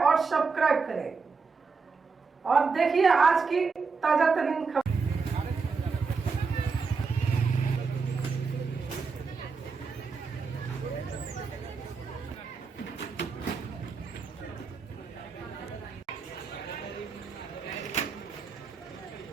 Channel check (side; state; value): left; quieter; 4.9 dB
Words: सब्सक्राइब करें और देखिए आज की ताजा तरीन खबर।